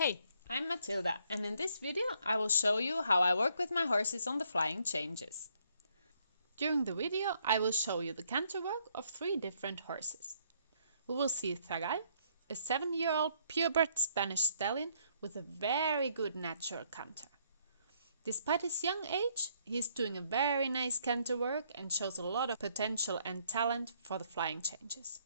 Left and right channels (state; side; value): inverted; both; correlation -0.69